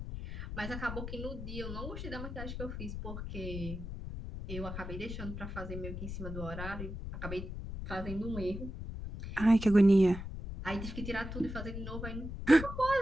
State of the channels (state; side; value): noise; left; rumble, 7 dB below the sound